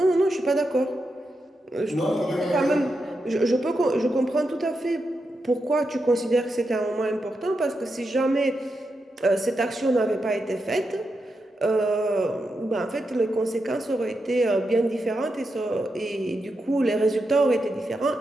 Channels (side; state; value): both; normal; correlation 0.86